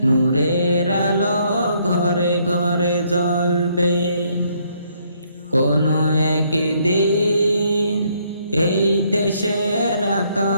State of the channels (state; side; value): inverted; both; correlation -0.69